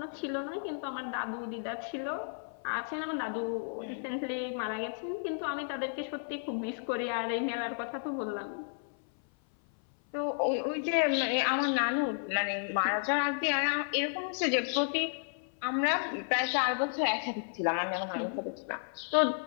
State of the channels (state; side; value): silent; right; 56 dB below the other